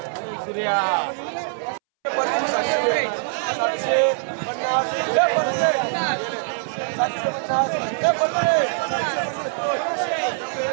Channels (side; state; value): left; silent; 63 dB below the other